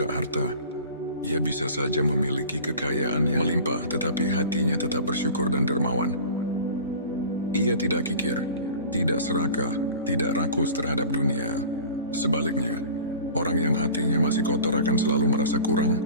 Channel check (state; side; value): inverted; both; correlation -0.40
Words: harta. Ia bisa saja memiliki kekayaan yang melimpah, tetapi hatinya tetap bersyukur dan dermawan. Ia tidak kikir, tidak serakah, tidak rakus terhadap dunia. Sebaliknya, orang yang hatinya masih kotor akan selalu merasa kurang.